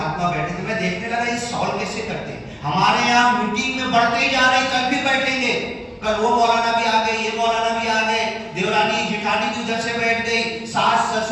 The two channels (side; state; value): both; identical; correlation 1.00